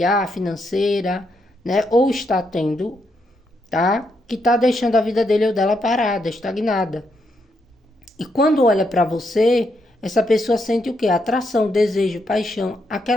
financeira, né, ou está tendo, tá? Que tá deixando a vida dele ou dela parada, estagnada. E quando olha para você, essa pessoa sente o quê? Atração, desejo, paixão,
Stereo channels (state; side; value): normal; both; correlation 0.79